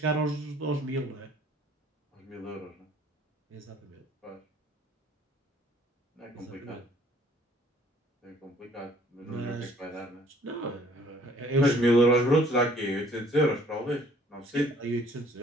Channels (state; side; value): normal; both; correlation 0.57